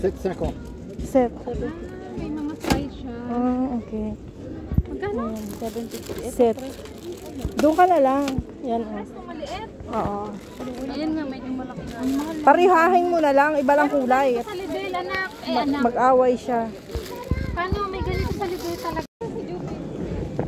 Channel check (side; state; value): both; identical; correlation 1.00